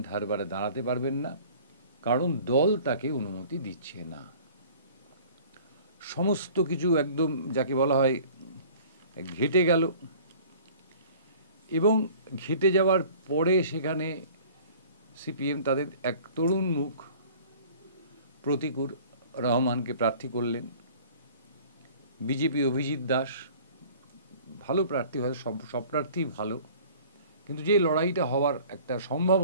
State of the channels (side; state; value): both; inverted; correlation -0.48